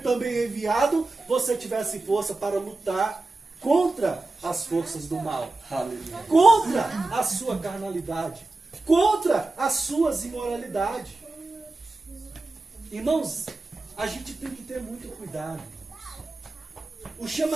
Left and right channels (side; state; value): left; quieter; 3.2 dB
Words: também enviado, você tivesse força para lutar contra as forças do mal, contra a sua carnalidade, contra as suas imoralidades. Irmãos, a gente tem que ter muito cuidado. O